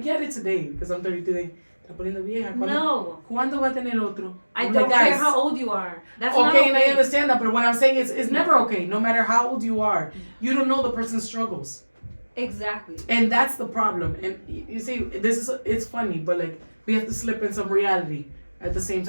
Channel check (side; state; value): both; inverted; correlation -1.00